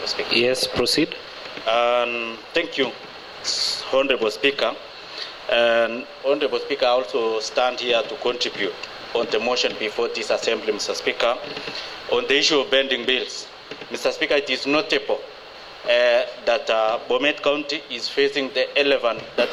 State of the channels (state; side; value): identical; both; correlation 1.00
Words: Speaker. Yes, proceed. Thank you, Honorable Speaker. And Honorable Speaker, I also stand here to contribute on the motion before this Assembly, Mr. Speaker, on the issue of pending bills. Mr. Speaker, it is notable that Bomet County is facing the elephant that